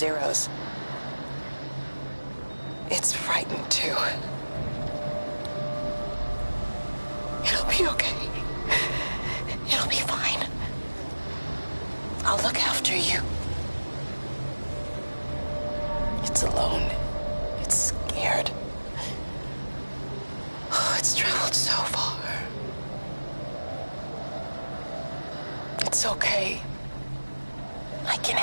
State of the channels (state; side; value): inverted; both; correlation -1.00